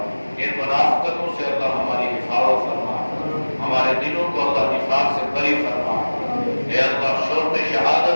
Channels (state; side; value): inverted; both; correlation -1.00